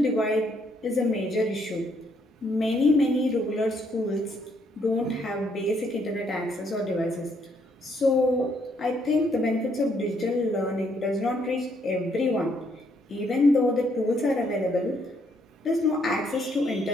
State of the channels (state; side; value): normal; both; correlation 0.71